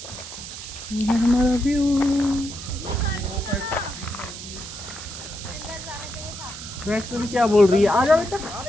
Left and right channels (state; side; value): noise; right; hiss, 11 dB below the sound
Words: ये हमारा व्यू। वैष्णवी क्या बोल रही है? आ जाओ बेटा।